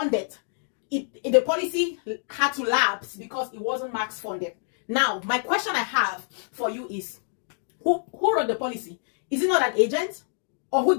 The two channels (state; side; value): silent; right; 61 dB below the other